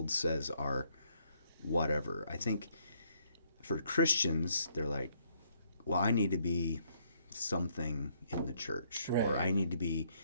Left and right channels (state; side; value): inverted; both; correlation -0.70